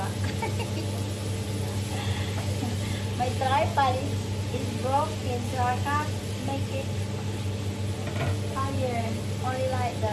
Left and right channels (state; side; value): identical; both; correlation 1.00